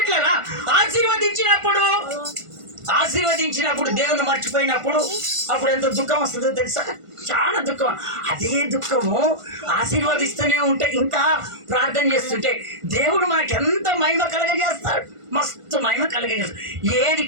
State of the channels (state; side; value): late; left; 1.5 ms